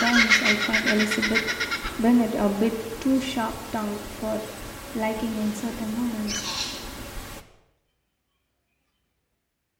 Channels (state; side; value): identical; both; correlation 1.00